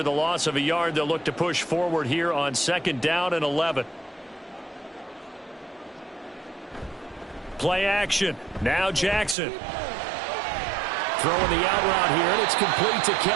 the loss of a yard, they'll look to push forward here on 2nd down and 11. Play action. Now Jackson. Throwing the out route here, and it's complete to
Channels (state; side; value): drops out; left; at 9.3 s